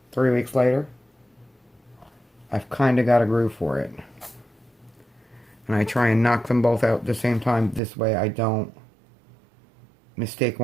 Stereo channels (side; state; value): left; drops out; at 7.8 s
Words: 3 weeks later, I've kind of got a groove for it. And I try and knock them both out at the same time. This way I don't mistake